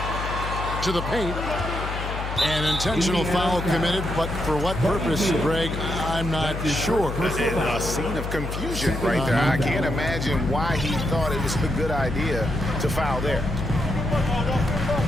To the paint. An intentional foul committed, but for what purpose, Greg, I'm not sure. A scene of confusion right there. I can't imagine why he thought it was a good idea to foul there.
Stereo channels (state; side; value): noise; left; hum, 5 dB below the sound